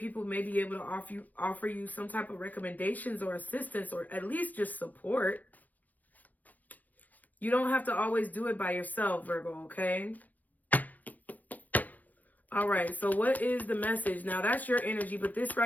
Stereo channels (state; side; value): late; right; 0.081 ms